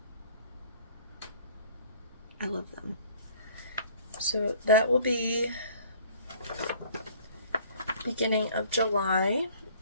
I love them. So that will be beginning of July,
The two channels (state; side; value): inverted; both; correlation -0.52